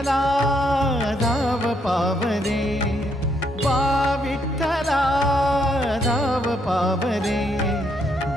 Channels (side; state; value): both; normal; correlation 0.74